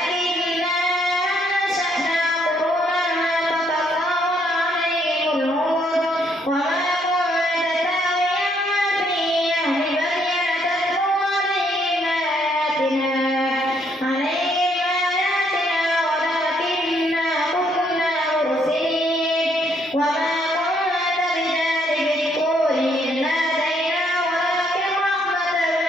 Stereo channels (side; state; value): both; normal; correlation 0.70